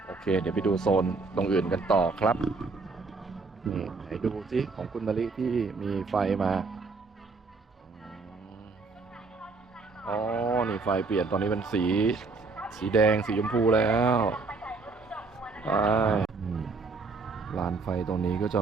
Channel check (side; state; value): left; quieter; 4.1 dB